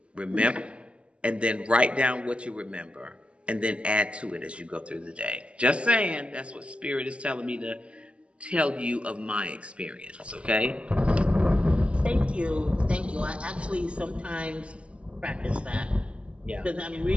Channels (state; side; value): late; left; 0.060 ms